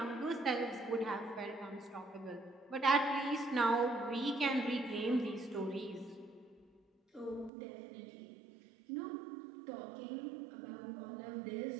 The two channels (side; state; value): left; drops out; at 7.5 s